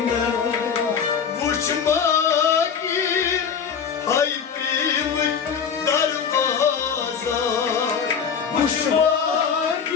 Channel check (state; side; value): quieter; right; 6.9 dB